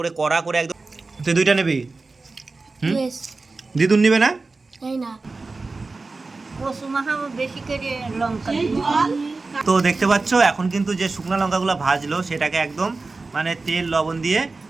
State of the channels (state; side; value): quieter; left; 3.7 dB